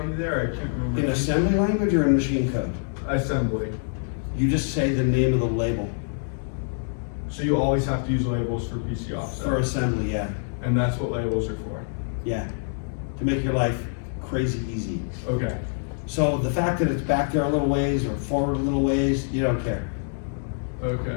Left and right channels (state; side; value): silent; right; digital silence